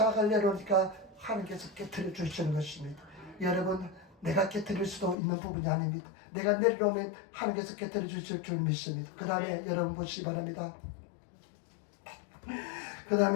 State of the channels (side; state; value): right; drops out; at 5.2 s